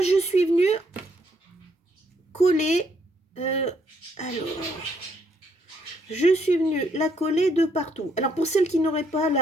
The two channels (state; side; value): normal; both; correlation 0.72